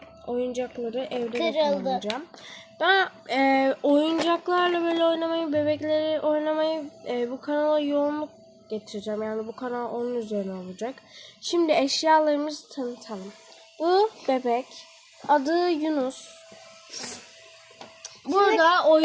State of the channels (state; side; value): identical; both; correlation 1.00